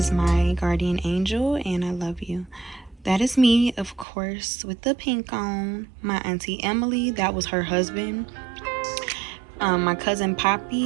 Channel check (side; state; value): left; drops out; at 4.0 s